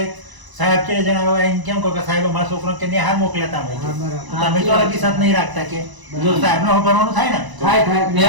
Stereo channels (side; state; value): left; late; 1.0 ms